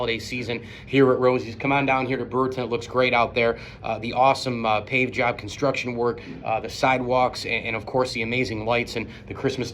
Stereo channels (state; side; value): identical; both; correlation 1.00